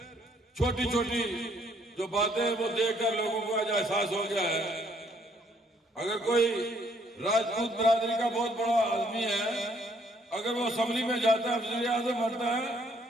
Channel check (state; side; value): normal; both; correlation 0.66